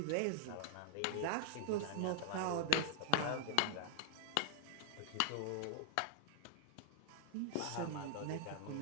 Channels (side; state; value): both; different; correlation 0.00